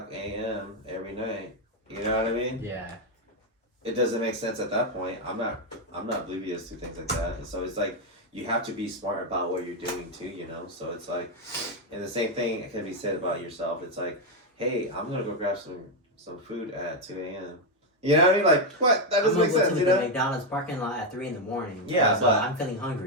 a.m. every night? You know what I mean? Yeah. It doesn't make sense at that point. I'm not oblivious to things like that. And so it's like you have to be smart about what you're doing too, So it's like, and the same thing can be said about yourself. It's like, hey, I'm gonna go grab some food at 2 a.m. You know what I mean? Like what? That doesn't make sense, to you the know? McDonald's parking lot at 3 a.m. Yeah, so but- I'm feeling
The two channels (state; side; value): normal; both; correlation 0.04